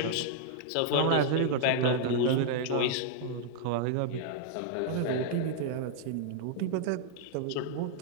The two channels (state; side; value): different; both; correlation -0.01